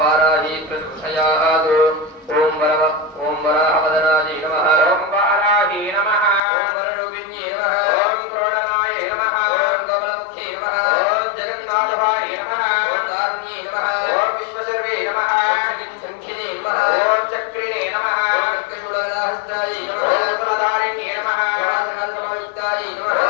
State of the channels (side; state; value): right; drops out; at 6.4 s